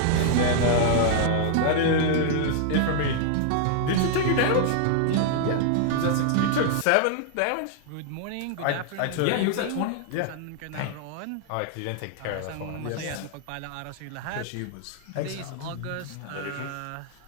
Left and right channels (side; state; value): both; different; correlation 0.00